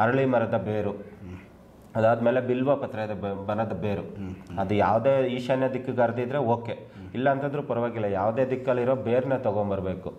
ಅರಳಿ ಮರದ ಬೇರು, ಅದಾದಮೇಲೆ ಬಿಲ್ವ ಪತ್ರದ ಬನದ ಬೇರು. ಅದು ಯಾವುದೇ ಈಶಾನ್ಯ ದಿಕ್ಕಿಗೆ ಹರಿದಿದ್ರೆ ಓಕೆ, ಇಲ್ಲ ಅಂತಂದ್ರೂ ಪರವಾಗಿಲ್ಲ, ಯಾವುದೇ ದಿಕ್ಕಲ್ಲಿರೋ ಬೇರನ್ನ ತೊಗೊಂಬರ್ಬೇಕು.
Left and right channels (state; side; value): identical; both; correlation 1.00